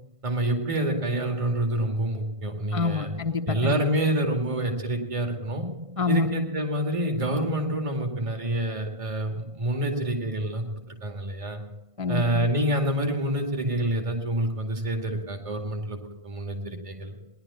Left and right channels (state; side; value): late; left; 1.5 ms